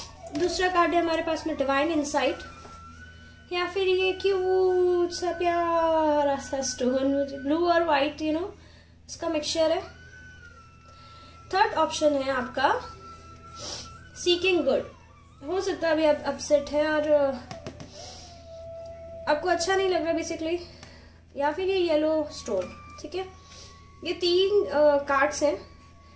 दूसरा कार्ड है हमारे पास में डिवाइन इंसाइट, या फिर ये क्यूट सा प्यारा सा स्टोन ब्लू और व्हाइट इसका मिक्सचर है। थर्ड ऑप्शन है आपका सीकिंग गुड। हो सकता है अभी आप अपसेट है और आपको अच्छा नहीं लग रहा बेसिकली, या फिर ये येलो स्टोन। ठीक है, ये 3 कार्ड्स हैं,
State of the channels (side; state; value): both; identical; correlation 1.00